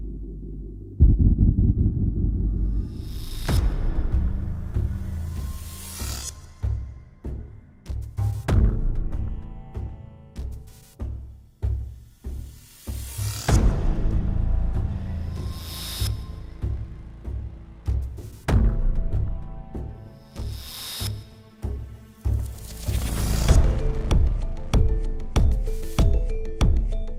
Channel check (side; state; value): both; identical; correlation 1.00